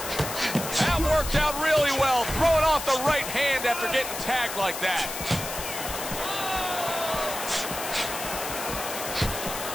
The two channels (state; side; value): noise; left; hiss, 7 dB below the sound